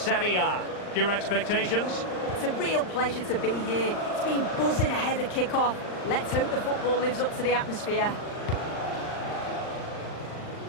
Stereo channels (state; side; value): late; right; 39 ms